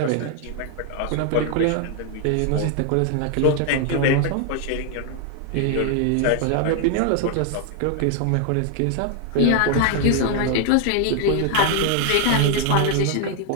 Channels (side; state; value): both; different; correlation 0.00